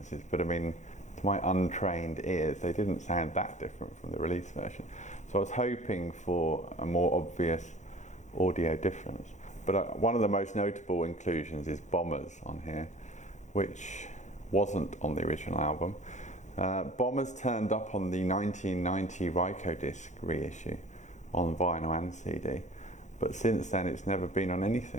but I mean, to my untrained ears, they didn't sound that different from the release version. So I was hoping for a more obvious audio difference. But one of the most notable inclusions is Bombers on here, which wasn't on the original album. Bombers turned up on the 1990 Rykodisc reissue on vinyl and CD, but since then it's never been on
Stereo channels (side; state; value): right; late; 0.34 ms